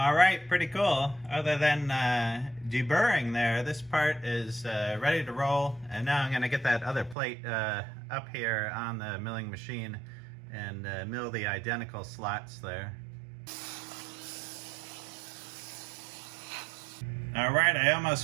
right, pretty cool. Other than deburring there, this part is ready to roll. And now I'm gonna get that other plate up here on the milling machine and mill the identical slots there. All right, I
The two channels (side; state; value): left; drops out; at 7.2 s